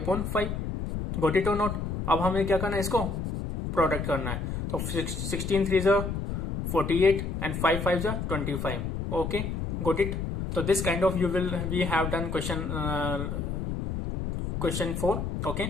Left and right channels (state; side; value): noise; left; rumble, 3 dB below the sound